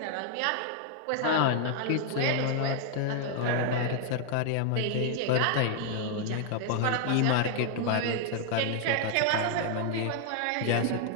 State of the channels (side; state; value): both; different; correlation 0.00